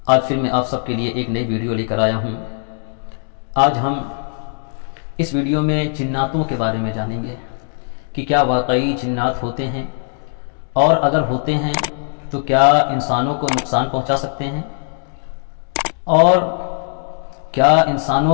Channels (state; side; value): silent; right; digital silence